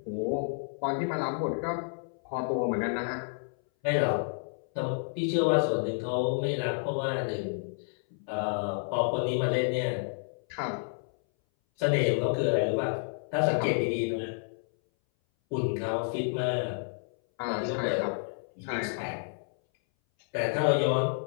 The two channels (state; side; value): silent; right; 58 dB below the other